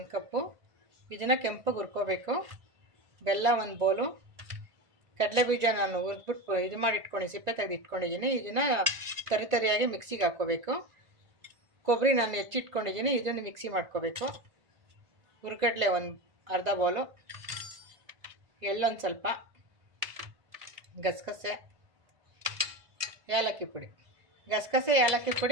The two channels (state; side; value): late; left; 1.9 ms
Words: ಕಪ್ಪು, ಇದನ್ನು ಕೆಂಪಗೆ ಹುರ್ಕೋಬೇಕು. ಬೆಲ್ಲ 1 ಬೌಲು, ಕಡಲೆ ಬೀಜ ನಾನು ಹುರಿದ್ಬಿಟ್ಟು ಇದು ಮಾಡಿ ಸಿಪ್ಪೆ ತೆಗೆದು ಇಟ್ಕೊಂಡಿದ್ದೀನಿ. ಇದನ್ನು ತರಿಯಾಗಿ ಮಿಕ್ಸಿಗೆ ಹಾಕ್ಕೋಬೇಕು. ಕೊಬ್ಬರಿ ನಾನು ಹೆಚ್ಚಿಟ್ಕೊಂಡಿದ್ದೀನಿ, ಇದನ್ನು ಮಿಕ್ಸಿ ಮಾಡ್ಕೋಬೇಕು. ಹುರ್ಗಡ್ಲೆ 1/2 ಬೌಲು, ಎಳ್ಳೊಂದು ಸ್ವಲ್ಪ, ಗಸಗಸೆ, ಏಲಕ್ಕಿ ಪುಡಿ. ಗಸಗಸೆ ಏಲಕ್ಕಿ